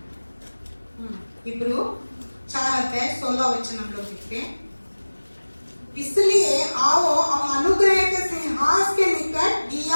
इब्रू 4:16 वचन हम लोग देखते हैं। इसलिए आओ हम अनुग्रह के सिंहासन के निकट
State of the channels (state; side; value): inverted; both; correlation -1.00